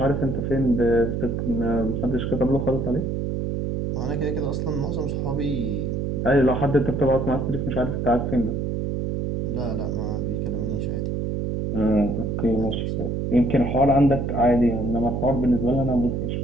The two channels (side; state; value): right; noise; hum, 1 dB below the sound